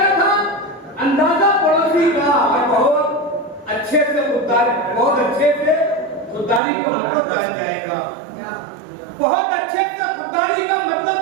था अंदाजा पड़ोसी का, और बहुत अच्छे से खुददारी, बहुत अच्छे से खुददारी का मतलब जान जाएगा, बहुत अच्छे से खुददारी का मतलब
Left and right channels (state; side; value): drops out; left; at 6.6 s